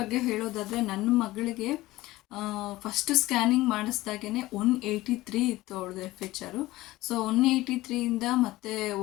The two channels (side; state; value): right; quieter; 17.9 dB